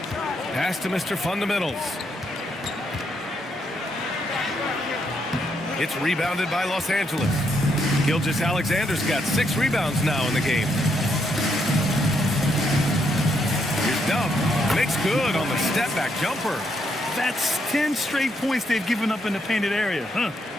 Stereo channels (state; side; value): normal; both; correlation 0.77